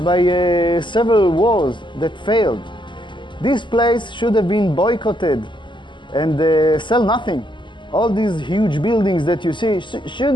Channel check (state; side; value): late; right; 0.23 ms